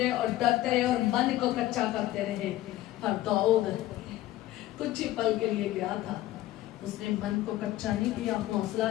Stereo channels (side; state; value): right; quieter; 15.1 dB